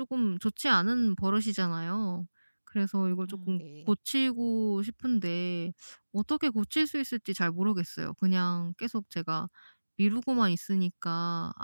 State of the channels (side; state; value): both; inverted; correlation -1.00